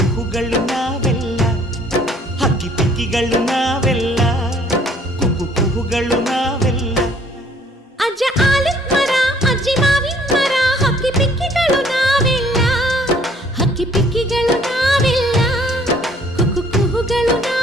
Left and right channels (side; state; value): both; normal; correlation 0.59